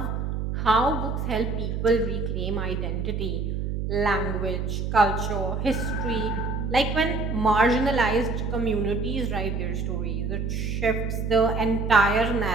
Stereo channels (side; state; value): right; noise; hum, 2 dB below the sound